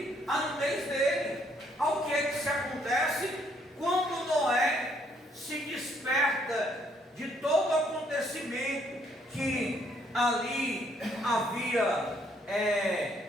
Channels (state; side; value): normal; both; correlation 0.68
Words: a nudez dele. Ao que é que se acontece? Quando Noé se desperta de todo o acontecimento que ali havia